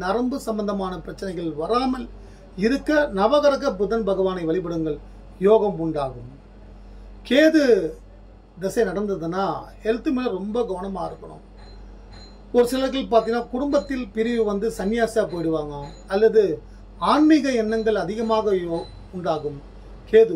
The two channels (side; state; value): both; identical; correlation 1.00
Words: நரம்பு சம்பந்தமான பிரச்சனைகள் வராமல் இருக்க நவகிரக புதன் பகவானை வழிபடுங்கள், யோகம் உண்டாகும். கேது தசை நடந்ததுன்னா ஹெல்த் மேல ரொம்ப கவனமா இருக்கணும். ஒரு சிலர்கள் பார்த்தீங்கன்னா குடும்பத்தில் பிரிவு சன்னியாசா போயிடுவாங்க, அல்லது ஆன்மீக எண்ணங்கள் அதிகமாக உண்டாகும். கேது